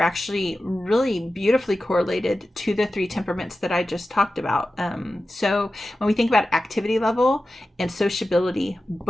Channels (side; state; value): both; normal; correlation 0.94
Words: really beautifully correlated to the 3 temperaments that I just talked about. So when we think about activity level and sociability,